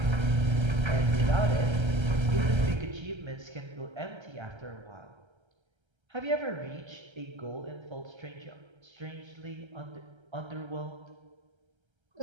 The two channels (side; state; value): left; late; 1.3 ms